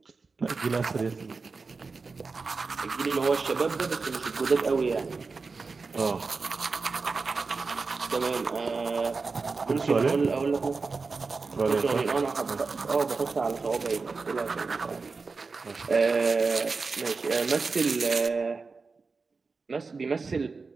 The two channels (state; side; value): quieter; left; 4.3 dB